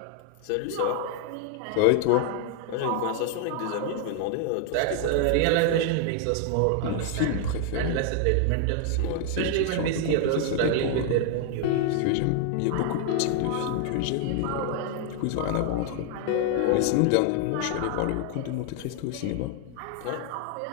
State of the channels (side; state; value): both; different; correlation 0.00